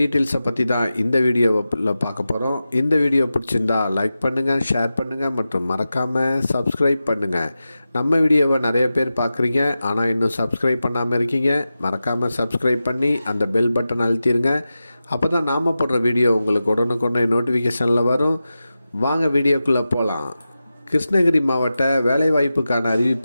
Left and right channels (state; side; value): inverted; both; correlation -0.93